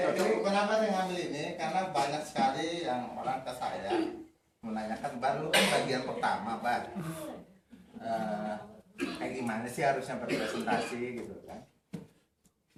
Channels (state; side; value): identical; both; correlation 1.00